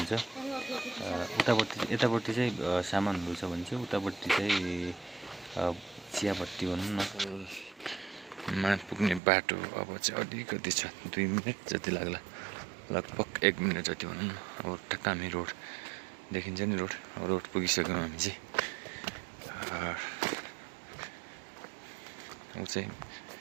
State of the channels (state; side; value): drops out; left; at 9.2 s